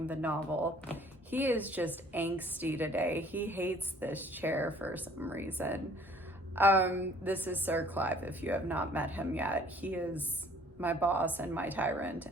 the novel. He is just angsty today. He hates this chair for some reason. This is Sir Clive, if you have not met him yet. He is my boss and my tyrant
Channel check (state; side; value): normal; both; correlation 0.56